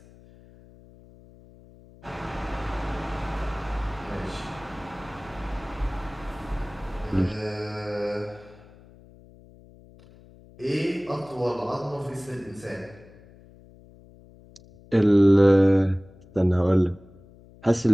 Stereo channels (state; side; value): noise; left; hum, 23 dB below the sound